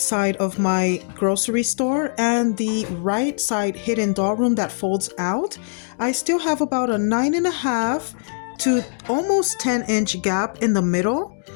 of my grocery store and the right side hidden doll room that folds out, I still have about a 9.5 to almost 10-inch gap in the middle.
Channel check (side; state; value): right; silent; digital silence